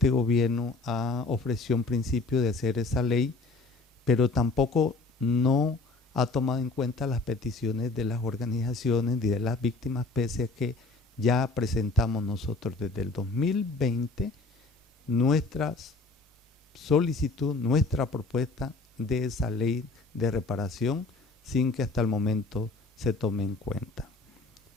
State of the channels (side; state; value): right; quieter; 3.5 dB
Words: gobierno ofreció un principio de hacer esa ley, pero tampoco no ha tomado en cuenta las peticiones de las organizaciones y de las víctimas, pese a que ya presentamos nosotros desde el 2020 nuestra solicitud, nuestra propuesta de esa ley de reparación sin que hasta el momento se tome en cuenta.